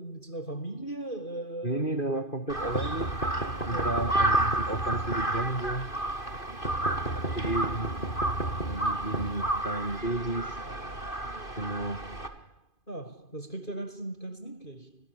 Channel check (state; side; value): late; right; 2.5 ms